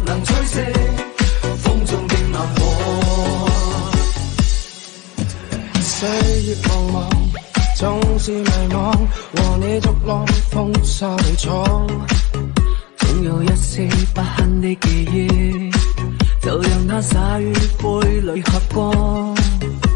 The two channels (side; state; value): right; quieter; 22.9 dB